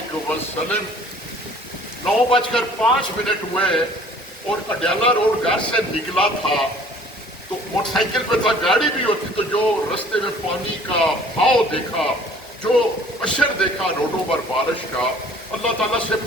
وسلم۔ 9:05 ہوئے اور اڈیالہ روڈ گھر سے نکلا تھا تو موٹر سائیکل پہ تھا، گاڑی بھی ہوتی تو جو رستے میں پانی کا بہاؤ دیکھا، جو اشر دیکھا روڈوں پر بارش کا، اللہ تعالیٰ سے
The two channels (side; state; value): both; normal; correlation 0.52